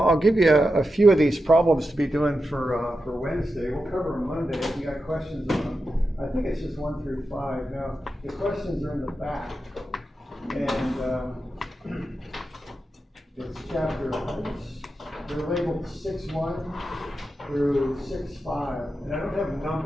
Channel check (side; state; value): both; normal; correlation 0.89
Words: I'll give you a few of these problems to be doing for Wednesday. We'll cover them Monday if you got questions on them. I think it's just 1 through 5. Now, the questions are in the back, and it's chapter, they're labeled 6.1 through 6.5, and I don't have them